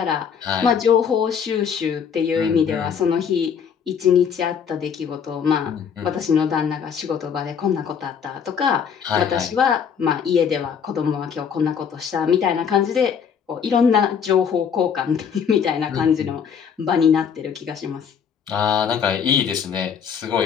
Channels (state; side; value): quieter; right; 7.2 dB